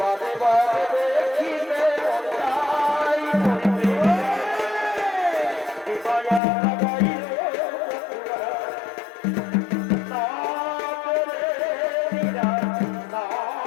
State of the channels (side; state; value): right; drops out; at 6.4 s